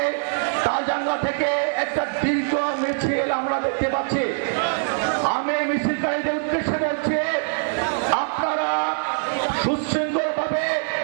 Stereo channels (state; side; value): silent; left; digital silence